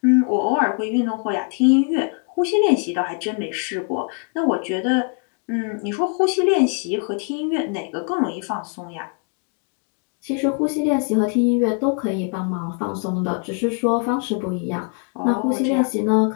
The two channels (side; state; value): right; quieter; 39.6 dB